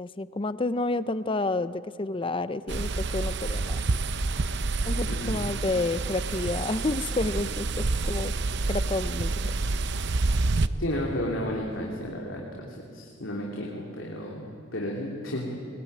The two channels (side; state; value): both; normal; correlation 0.64